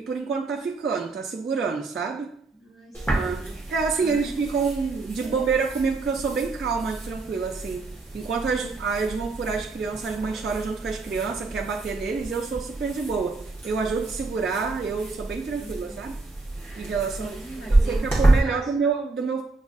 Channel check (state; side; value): quieter; left; 3.6 dB